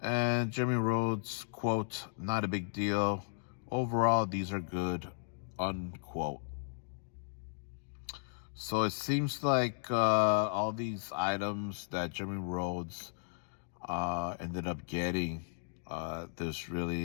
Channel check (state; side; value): silent; right; digital silence